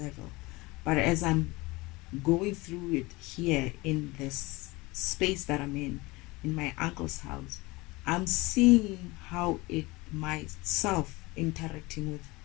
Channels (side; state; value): right; quieter; 22.8 dB